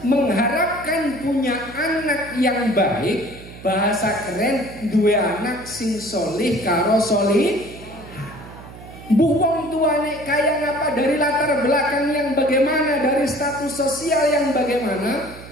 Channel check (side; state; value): right; noise; hum, 16 dB below the sound